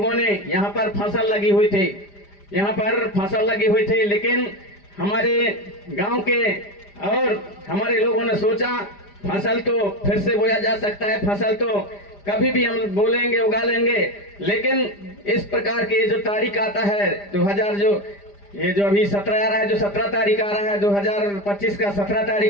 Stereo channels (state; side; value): late; right; 5.0 ms